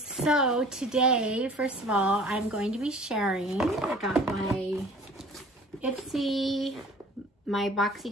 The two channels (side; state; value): both; normal; correlation 0.48